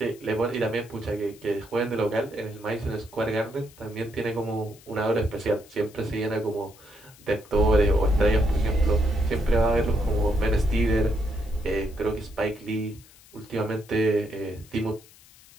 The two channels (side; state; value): left; noise; hiss, 24 dB below the sound